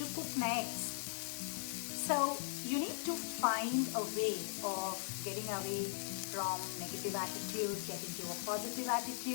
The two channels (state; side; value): silent; right; digital silence